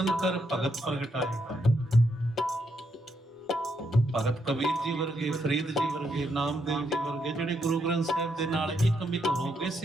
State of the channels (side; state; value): both; normal; correlation 0.78